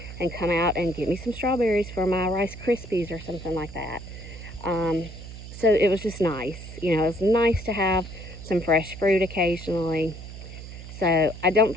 and come out and get me some strawberries for my Rice Krispies or something like that. So it was just nice, you know, it was nice to have some fresh fruit occasionally. So I don't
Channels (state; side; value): noise; right; hum, 12 dB below the sound